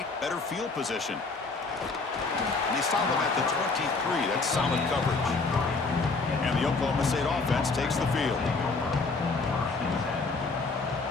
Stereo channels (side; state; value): right; quieter; 3.9 dB